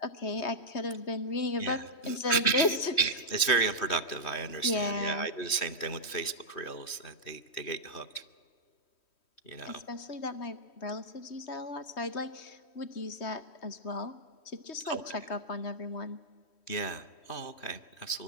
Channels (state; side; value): late; right; 3.1 ms